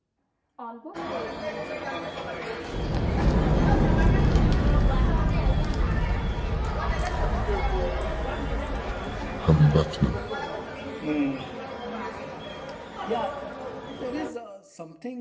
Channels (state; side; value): identical; both; correlation 1.00